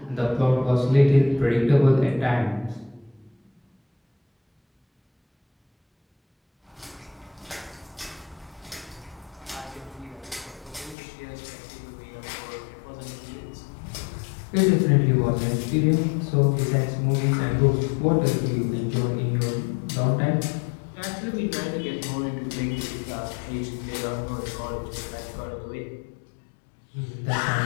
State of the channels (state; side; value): drops out; right; at 11.0 s